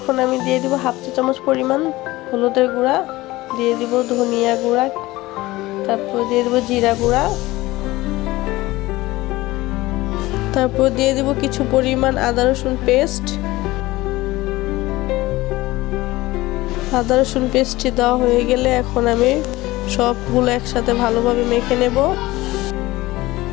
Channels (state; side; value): quieter; right; 19.0 dB